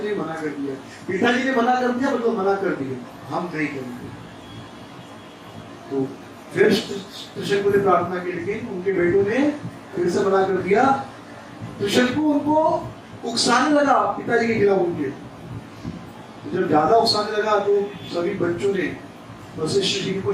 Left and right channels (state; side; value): identical; both; correlation 1.00